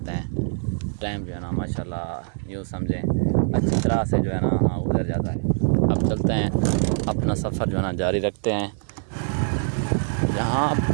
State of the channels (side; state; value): left; silent; 61 dB below the other